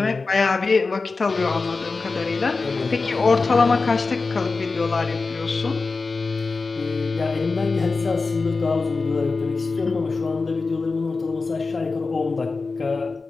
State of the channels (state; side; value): quieter; right; 4.0 dB